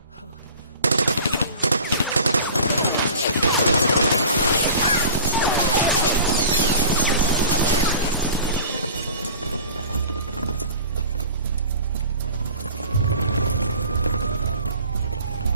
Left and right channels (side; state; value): both; inverted; correlation -0.42